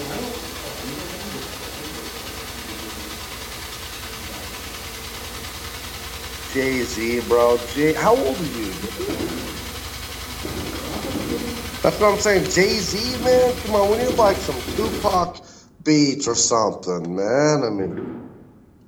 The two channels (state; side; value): identical; both; correlation 1.00